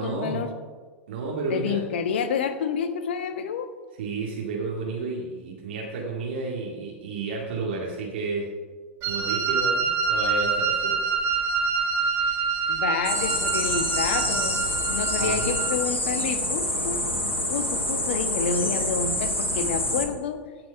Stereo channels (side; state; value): both; normal; correlation 0.05